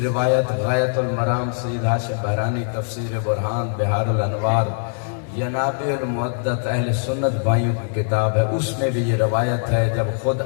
روایت غایت المرام سید ہاشم بحرانی تفسیر برہان بہار الانوار ینابع المعدت اہل سنت بھائیوں کی کتاب ہے، اس میں بھی یہ روایت ہے جب خود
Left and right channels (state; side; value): silent; right; digital silence